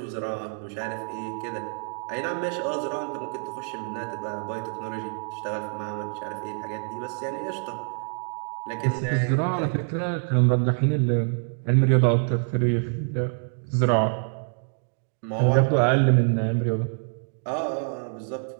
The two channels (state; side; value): silent; left; digital silence